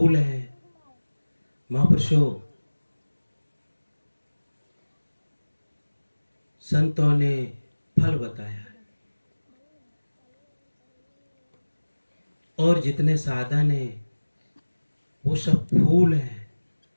है। महापुरुषों, संतों ने फल बताया है और जितने साधन है वो सब फूल है।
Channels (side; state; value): both; inverted; correlation -1.00